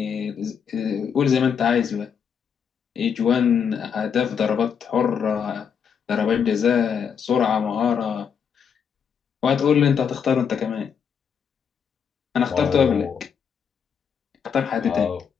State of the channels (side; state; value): right; quieter; 7.1 dB